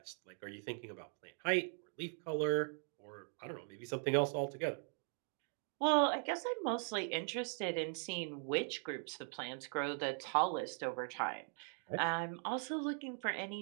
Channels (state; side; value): silent; left; 51 dB below the other